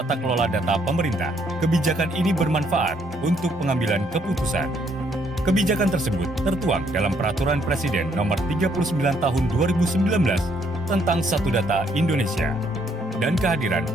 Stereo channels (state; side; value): normal; both; correlation 0.69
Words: kelola data pemerintah. Kebijakan ini bermanfaat untuk pengambilan keputusan. Kebijakan tersebut tertuang dalam Peraturan Presiden Nomor 39 Tahun 2019 tentang Satu Data Indonesia dan kehadiran